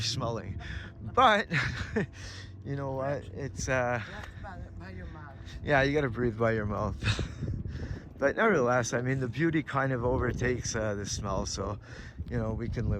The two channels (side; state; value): both; identical; correlation 1.00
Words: But you know what? It's By your mouth. yeah, you gotta breathe by your mouth. But nevertheless, I mean, the beauty kind of overtakes the smell, so you know, we can